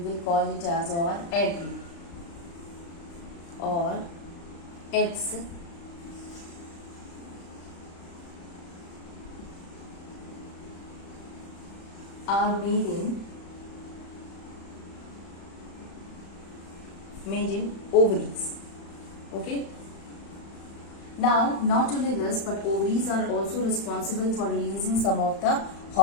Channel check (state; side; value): late; right; 35 ms